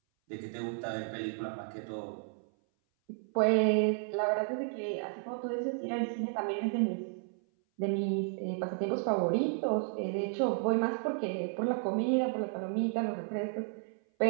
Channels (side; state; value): left; silent; 56 dB below the other